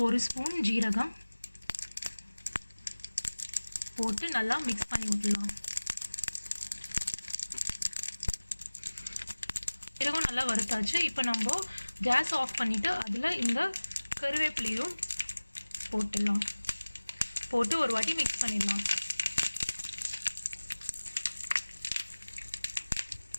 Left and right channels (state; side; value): inverted; both; correlation -1.00